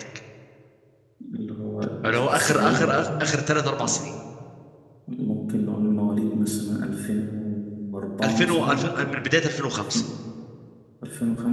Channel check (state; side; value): identical; both; correlation 1.00